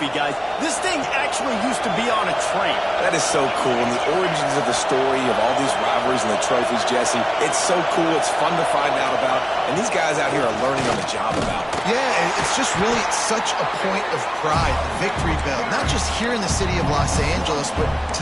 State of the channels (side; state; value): both; identical; correlation 1.00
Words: guys. This thing actually used to be on a train. That is so cool, and the origins of the story of all these rivalries and the trophies, Jesse, it's so cool, it's fun to find out about, and these guys out here are learning on the job about it. Yeah, it's just really such a point of pride, the victory bell. Not just here in the city of Los Angeles, but to